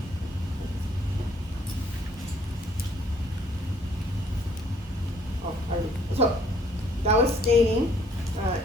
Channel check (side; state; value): both; normal; correlation 0.63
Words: So that was staining,